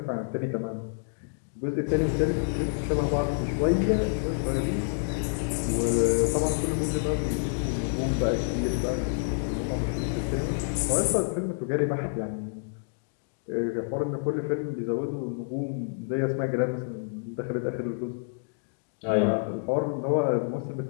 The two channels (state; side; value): silent; right; digital silence